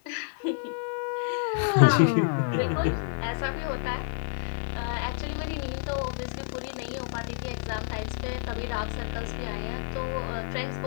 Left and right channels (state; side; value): silent; right; 59 dB below the other